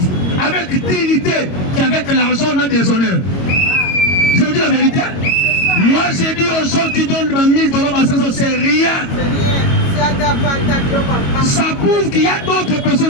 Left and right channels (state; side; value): late; right; 22 ms